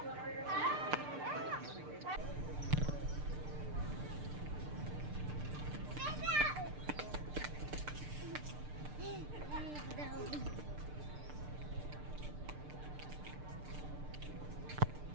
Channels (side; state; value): left; late; 6.7 ms